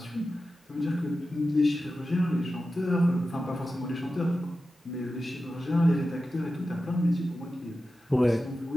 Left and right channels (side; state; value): both; normal; correlation 0.93